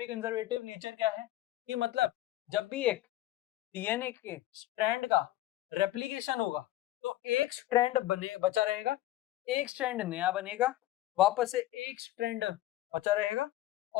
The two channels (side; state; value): right; quieter; 15.0 dB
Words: कंजर्वेटिव नेचर क्या है कि मतलब जब भी एक डीएनए के स्ट्रैंड का रेप्लिकेशन होगा तो एक स्ट्रैंड बचा रहेगा, एक स्ट्रैंड नया बनेगा, वापस से एक स्ट्रैंड बचा रहेगा